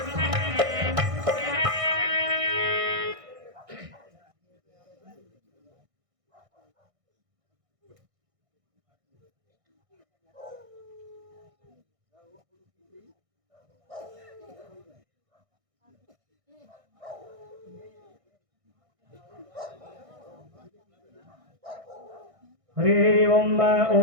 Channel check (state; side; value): late; left; 1.6 ms